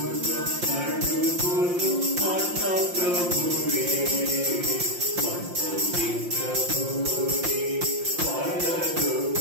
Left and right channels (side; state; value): left; late; 5.7 ms